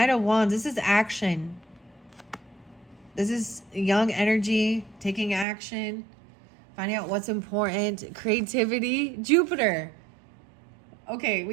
of Wands. This is action. This is young energy, taking action, finding out what's important, creativity, Jupiter. Okay,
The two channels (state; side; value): drops out; left; at 5.5 s